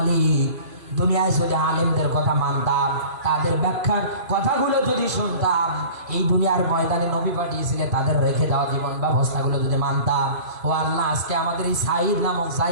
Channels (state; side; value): late; left; 2.8 ms